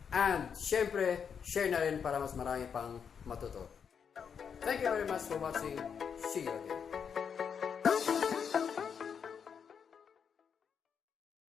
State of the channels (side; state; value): right; quieter; 7.0 dB